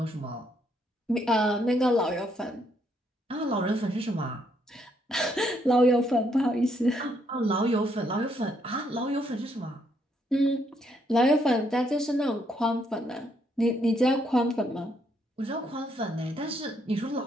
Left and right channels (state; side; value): normal; both; correlation 0.73